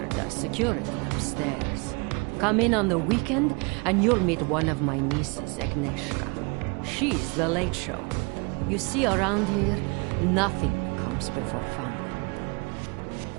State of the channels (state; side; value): quieter; left; 30.7 dB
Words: does security upstairs. Come in on the weekend, and you'll meet one of my nieces, Agnieszka. She's the late show. You see, around here, nothing comes before family.